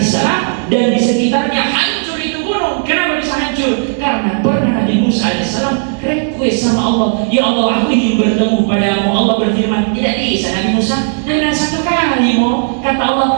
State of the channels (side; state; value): left; silent; digital silence